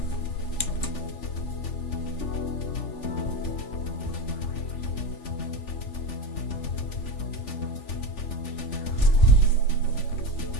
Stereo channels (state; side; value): late; right; 3.4 ms